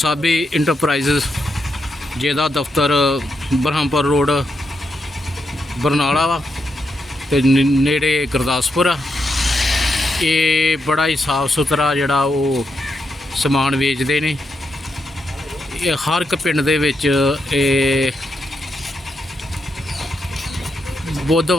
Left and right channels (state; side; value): normal; both; correlation 0.83